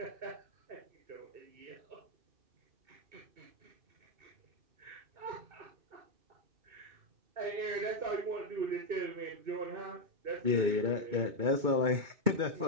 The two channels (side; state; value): left; late; 2.3 ms